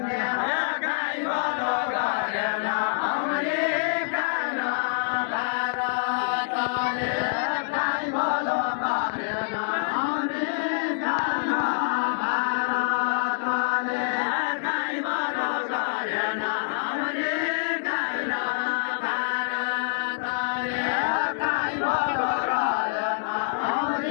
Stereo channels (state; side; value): silent; right; 61 dB below the other